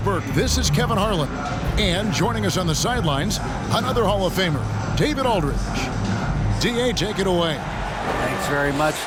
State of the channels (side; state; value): both; identical; correlation 1.00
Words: this is Kevin Harlan. And joining us on the sidelines, another Hall of Famer, David Aldridge. DA, take it away. Thanks very much.